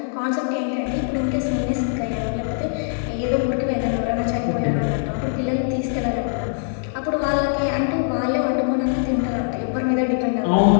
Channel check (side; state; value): right; silent; digital silence